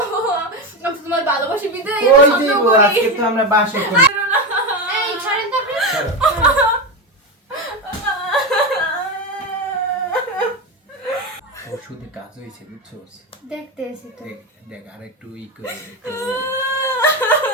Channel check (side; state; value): both; normal; correlation 0.15